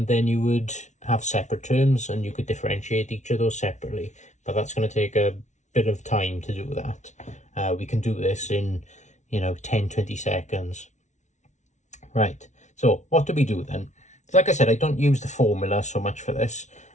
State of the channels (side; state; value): right; late; 0.34 ms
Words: then you would have separate terms and you could differentiate each of those separately, but that's going to take a bit of time to do that. We can do this in 10-20 seconds. Right, so what do we do then? Like I said, I don't use the formula so much for this.